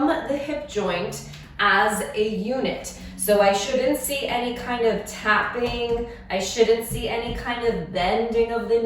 the hip joint as a unit. So I shouldn't see any kind of tapping. I shouldn't see any kind of bending of the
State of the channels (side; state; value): both; identical; correlation 1.00